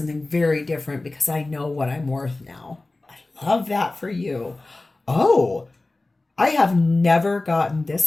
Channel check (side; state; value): right; quieter; 3.1 dB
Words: very different because I know what I'm worth now. I love that for you. Oh, I have never gotten